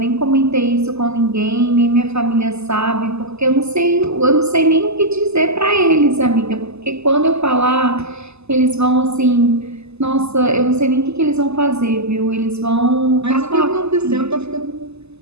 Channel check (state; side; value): late; left; 0.80 ms